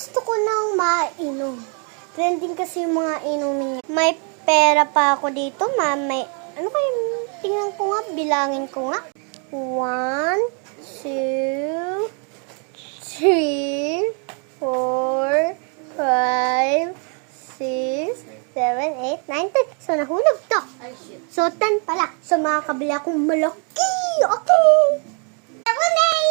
ko nang mainom. Trending kasi yung mga inumin niya. May pera pa ako dito, ma. May, ano kayo, tingnan ko nga, bilangin ko nga. 1, 2, 3, 4, 5, 6, 7, 8, 9, 10. So, nahulog to. So, 10 pala. So, makakabili akong malaki. Okay.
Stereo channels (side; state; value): left; quieter; 39.4 dB